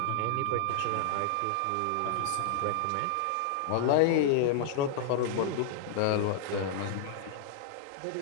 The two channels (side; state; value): both; different; correlation -0.01